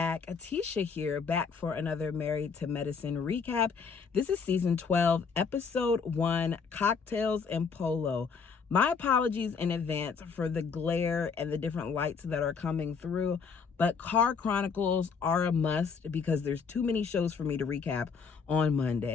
Atisha here, back for another Married to Medicine recap. This is season 12, episode 1, Cocktails and Polo. My apologies in advance for the glare and the different lights that are coming through, but Car Chronicles are a must because there's too many shows for me to recap on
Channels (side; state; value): right; quieter; 5.6 dB